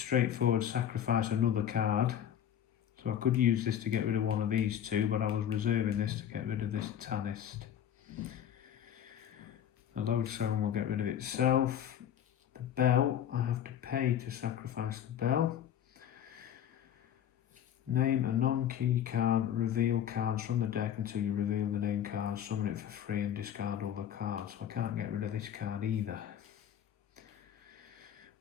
sacrifice another card. So I could use this to get rid of one of these 2, but I was reserving this to get rid of this Tanist. The lodestone will get rid of itself. The bell, I have to pay to sacrifice the bell. Name a non-key card, reveal cards from the deck until you reveal the name card, summon it for free and discard all the cards. So I can't get rid of this card either.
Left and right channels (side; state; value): right; quieter; 9.9 dB